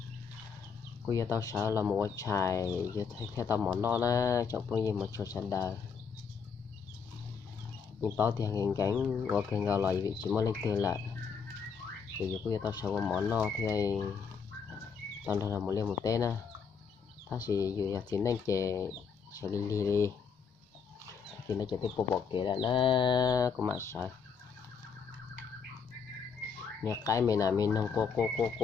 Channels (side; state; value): right; quieter; 6.1 dB